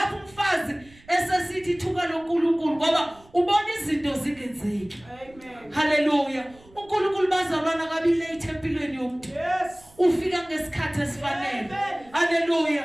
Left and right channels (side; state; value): right; noise; rumble, 26 dB below the sound